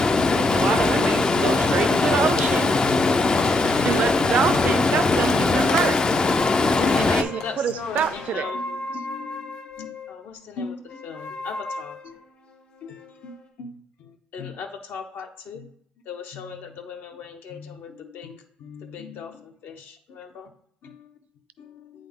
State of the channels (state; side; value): normal; both; correlation 0.76